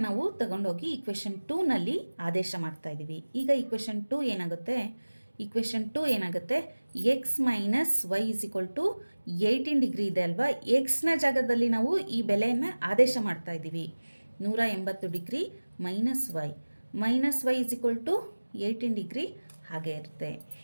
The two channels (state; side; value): inverted; both; correlation -1.00